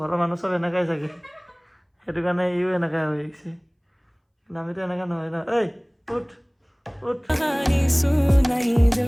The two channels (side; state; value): both; identical; correlation 1.00